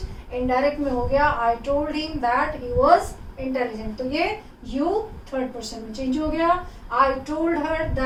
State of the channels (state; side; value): identical; both; correlation 1.00